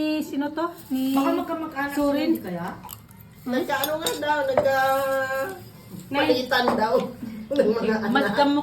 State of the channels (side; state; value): both; identical; correlation 1.00